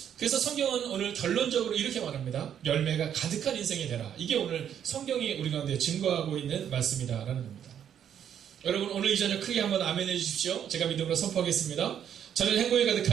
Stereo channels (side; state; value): left; quieter; 9.2 dB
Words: 그래서 성경은 오늘 결론적으로 이렇게 말합니다. 열매가 가득한 인생이 되라. 이게 오늘 성경이 우리 가운데 증거하고 있는 말씀이다라는 겁니다. 여러분, 오늘 이 저녁 크게 한번 아멘 해주십시오. 제가 믿음으로 선포하겠습니다. 저는 행복이